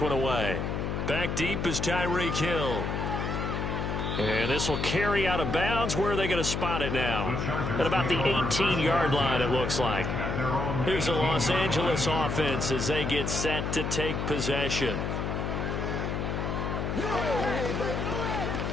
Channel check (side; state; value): left; noise; hum, 2 dB below the sound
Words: one away. Back deep is Tyreek Hill. And this will carry out of bounds. Where are they going to spot it now? At about the 18-yard line, it looks like. Here's the Los Angeles offense as they get set to take possession.